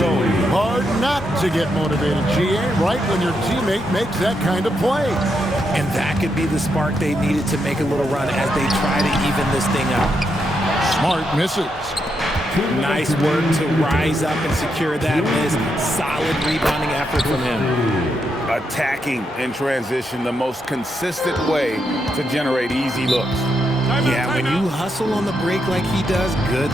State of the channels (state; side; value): normal; both; correlation 0.81